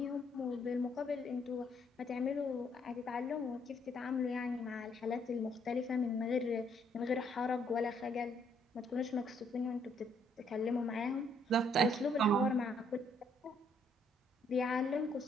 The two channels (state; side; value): normal; both; correlation 0.69